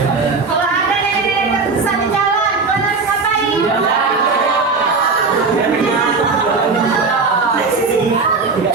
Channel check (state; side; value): quieter; left; 4.3 dB